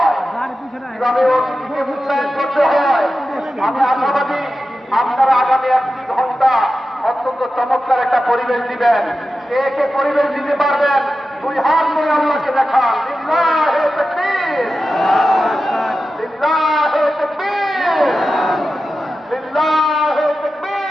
কিভাবে অতিথিকে মূল্যায়ন করতে হয়। আমি আশাবাদী আপনারা আগামী 1 ঘন্টা অত্যন্ত চমৎকার একটা পরিবেশ দিবেন। কে কে পরিবেশ দিতে পারবেন? 2 হাত নিয়ে আল্লাহকে দেখান। লিল্লাহে তাকবীর, লিল্লাহে তাকবীর, লিল্লাহে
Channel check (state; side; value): normal; both; correlation 0.92